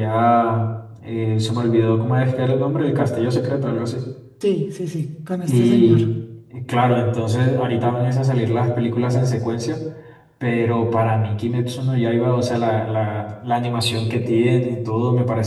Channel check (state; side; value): identical; both; correlation 1.00